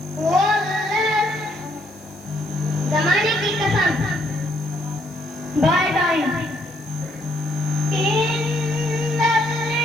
ज़माने की कसम। By time. इन्नल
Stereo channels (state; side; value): noise; left; hiss, 26 dB below the sound